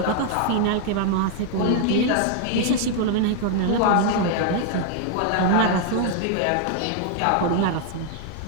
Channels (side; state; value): both; different; correlation 0.00